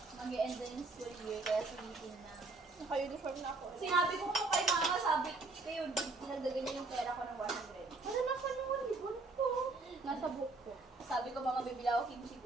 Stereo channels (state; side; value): quieter; left; 3.4 dB